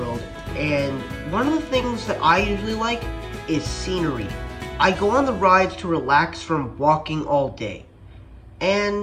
and one of the things that I usually like is scenery. I go on the rides to relax from walking all day.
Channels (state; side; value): identical; both; correlation 1.00